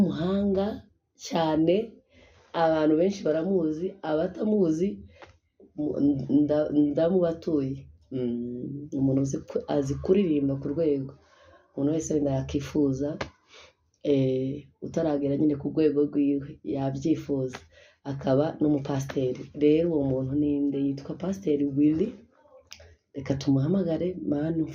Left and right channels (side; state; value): both; identical; correlation 1.00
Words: cyane, abantu benshi baramuzi, abatamuzi ndamubatuye. Umuntu azi kuririmba ku rwego umuntu wese wenda yakifuza, utaragera nyine ku rwego rwiwe yabyifuza. Akaba n'umupasiteri. Rero uwo muntu ninde? Yitwa Pasiteri Willy. Reka tumuhamagare. Mana